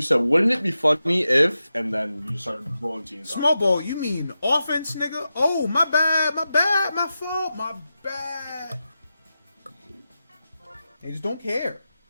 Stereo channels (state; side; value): inverted; both; correlation -0.90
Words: wouldn't it be funny if, and then you started blowing teams Small ball, you mean offense, nigga? Oh, my bad, my fault, my bad. They just don't care.